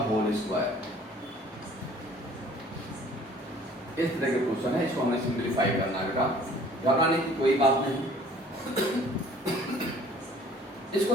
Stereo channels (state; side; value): normal; both; correlation 0.53